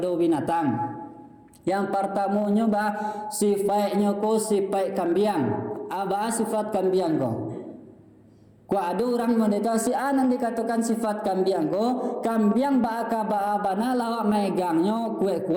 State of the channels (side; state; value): both; identical; correlation 1.00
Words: binatang. Yang pertamanya sifatnya ko sifat kambing. Sifat kambing ko. Ko ada orang meditasi nan dikatakan sifat kambing ko, kambing bana lawak megangnya